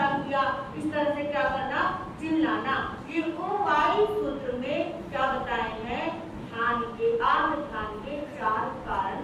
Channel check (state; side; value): identical; both; correlation 1.00